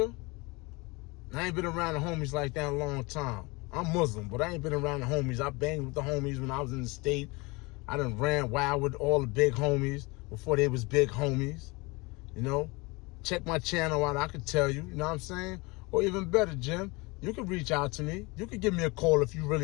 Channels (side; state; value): right; quieter; 25.6 dB